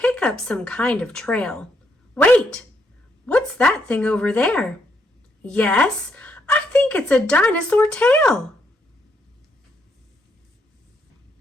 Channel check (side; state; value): both; normal; correlation 0.76